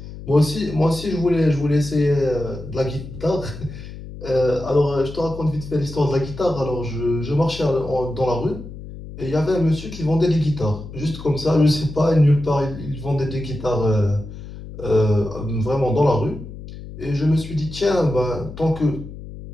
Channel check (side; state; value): left; noise; hum, 13 dB below the sound